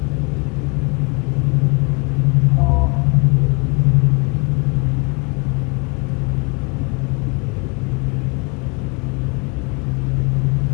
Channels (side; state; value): right; quieter; 31.4 dB